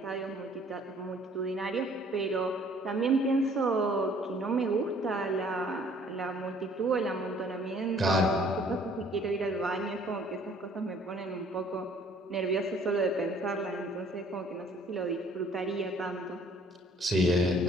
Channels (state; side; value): normal; both; correlation 0.57